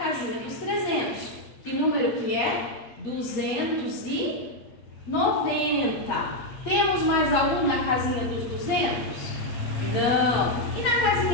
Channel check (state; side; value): late; right; 8.5 ms